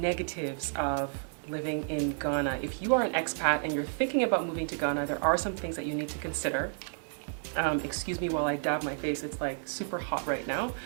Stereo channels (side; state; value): left; silent; digital silence